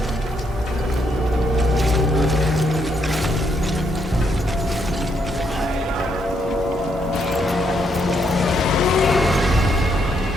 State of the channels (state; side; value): normal; both; correlation 0.75